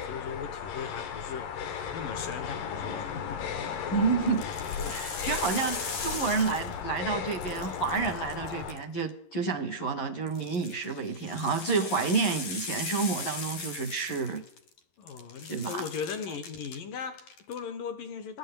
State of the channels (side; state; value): right; late; 11 ms